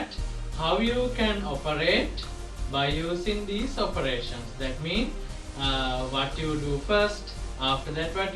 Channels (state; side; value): identical; both; correlation 1.00